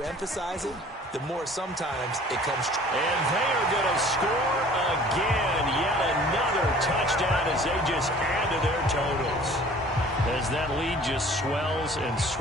emphasize it, the more sometimes it comes true. And they are going to score again. Yet another touchdown as they just add to their totals. as that lead just swells and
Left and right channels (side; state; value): both; normal; correlation 0.50